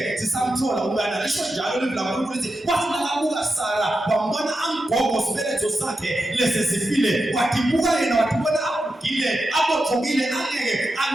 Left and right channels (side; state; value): both; normal; correlation 0.89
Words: sisamthola umntana. Lisho njalo live la uNkulunkulu lithi wathi nakabuka Sara wambona amgogo isibeletho sakhe lesesifile wathi buka yena wathi bona abugile abothokile angeke